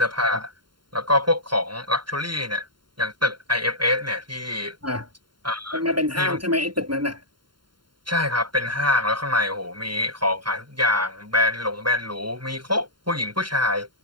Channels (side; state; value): left; late; 0.72 ms